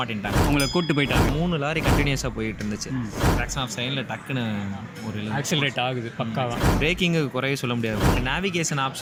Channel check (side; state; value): both; identical; correlation 1.00